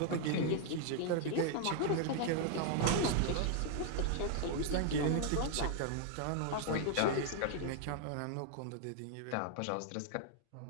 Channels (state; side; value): different; both; correlation 0.00